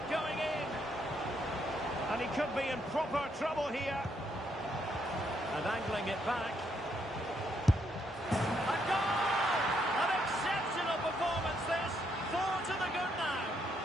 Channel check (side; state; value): both; normal; correlation 0.75